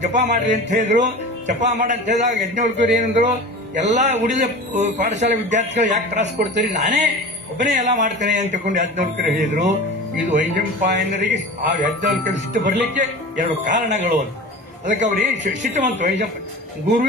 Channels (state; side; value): normal; both; correlation 0.34